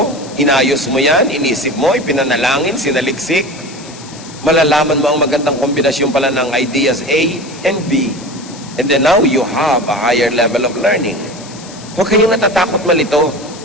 inayos mo yan, inisip mo, ipinanalangin, sinaliksik, malalaman mo ang magandang kombinasyon pala ng ideas A and B. And then now you have a higher level of learning. Huwag kayong natatakot malito.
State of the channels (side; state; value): left; noise; hiss, 18 dB below the sound